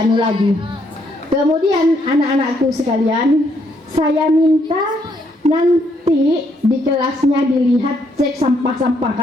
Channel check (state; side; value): normal; both; correlation 0.72